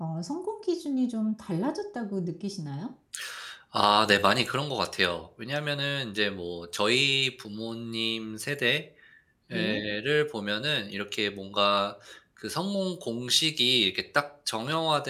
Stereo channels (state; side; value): identical; both; correlation 1.00